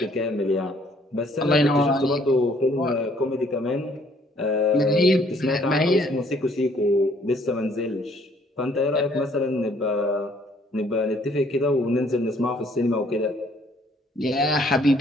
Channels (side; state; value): both; normal; correlation 0.63